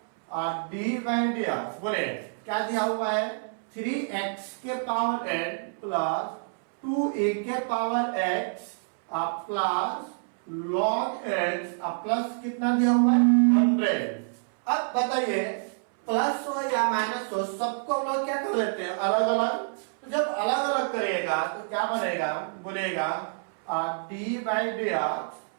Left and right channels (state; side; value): silent; left; 60 dB below the other